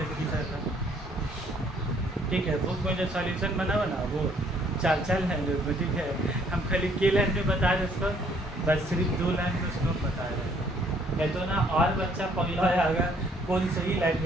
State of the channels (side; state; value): both; normal; correlation 0.63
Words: रखी जाता ठीक है। बुक में जो सॉल्यूशन बना वो 4 लाइन में ठीक है हम खाली के लाइन में बता रहे उसको बस सिर्फ 2 लाइन में उसको बता रहे नहीं तो ना और बच्चा पगला आएगा कौन सही लाइन